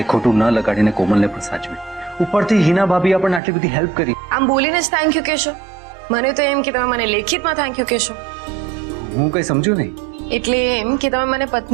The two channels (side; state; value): left; drops out; at 3.4 s